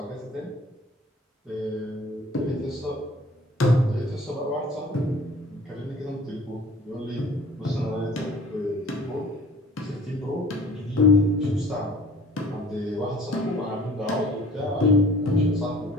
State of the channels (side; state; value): both; normal; correlation 0.49